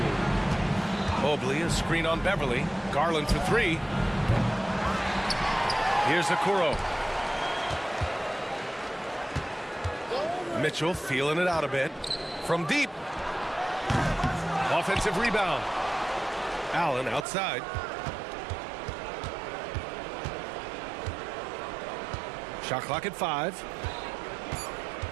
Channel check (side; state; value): left; drops out; at 17.2 s